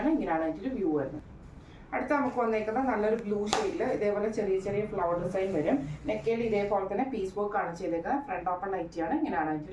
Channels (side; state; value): both; identical; correlation 1.00